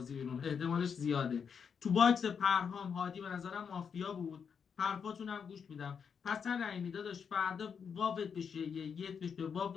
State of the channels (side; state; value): right; quieter; 6.7 dB